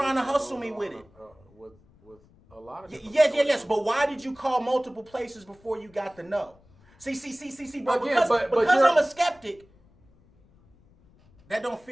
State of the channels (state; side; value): noise; left; rumble, 29 dB below the sound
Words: to hustle me with it? With a lot of... Yes. But why did you call multiple places before you got the no? See, bro. Again, because I'm a skeptic, that don't